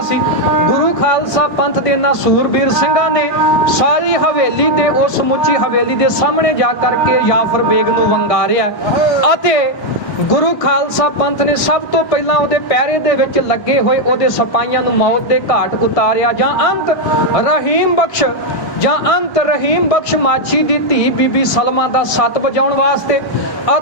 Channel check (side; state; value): right; late; 1.5 ms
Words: ਸੀ। ਗੁਰੂ ਖਾਲਸਾ ਪੰਥ ਦੇ ਇਹਨਾਂ ਸੂਰਬੀਰ ਸਿੰਘਾਂ ਨੇ ਸਾਰੀ ਹਵੇਲੀ ਤੇ ਉਸ ਸਮੁੱਚੀ ਹਵੇਲੀ ਦੇ ਸਾਹਮਣੇ ਜਾ ਕਰਕੇ ਜਾਫਰ ਬੇਗ ਨੂੰ ਵੰਗਾਰਿਆ ਅਤੇ ਗੁਰੂ ਖਾਲਸਾ ਪੰਥ ਨੇ ਸਭ ਤੋਂ ਪਹਿਲਾਂ ਉਹਦੇ ਪਹਿਰੇ ਦੇ ਵਿੱਚ ਲੱਗੇ ਹੋਏ ਉਹਦੇ ਸਿਪਾਹੀਆਂ ਨੂੰ ਮੌਤ ਦੇ ਘਾਟ ਉਤਾਰਿਆ। ਜਾਂ ਅੰਤ ਰਹੀਮ ਬਖਸ਼ ਮਾਛੀ ਦੀ ਧੀ ਬੀਬੀ ਸਲਮਾ ਦਾ ਸੱਤ ਵਜਾਉਣ ਵਾਸਤੇ